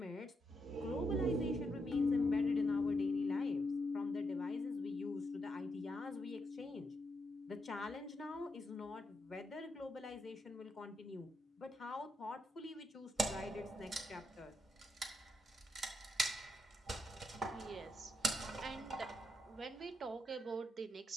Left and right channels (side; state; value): both; normal; correlation 0.81